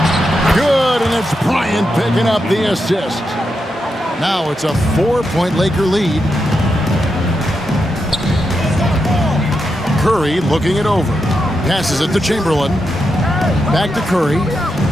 Good, and it's Bryant picking up the assist. Now it's a 4-point Laker lead. Curry looking it over. Passes it to Chamberlain. Back to Curry.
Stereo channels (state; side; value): normal; both; correlation 0.85